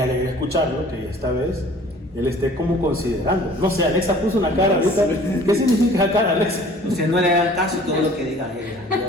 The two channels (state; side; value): normal; both; correlation 0.50